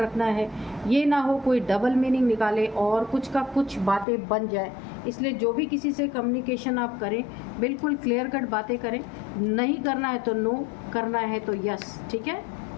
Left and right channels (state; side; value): drops out; right; at 4.0 s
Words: है। ये ना हो कोई डबल मीनिंग निकाले और कुछ का कुछ बातें बन जाए। इसलिए जो भी किसी से कम्युनिकेशन आप करें, बिल्कुल क्लियर कट बातें करें। नहीं करना है तो नो, करना है तो यस, ठीक है।